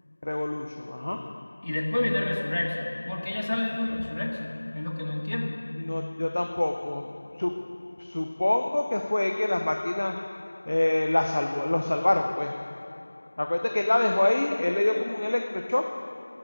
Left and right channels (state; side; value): inverted; both; correlation -1.00